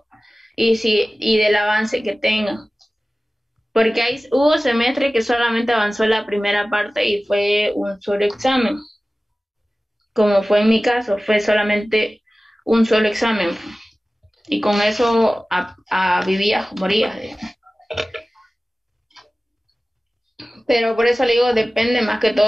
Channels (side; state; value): both; normal; correlation 0.97